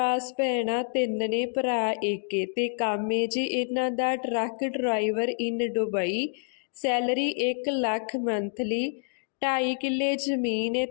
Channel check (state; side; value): silent; right; digital silence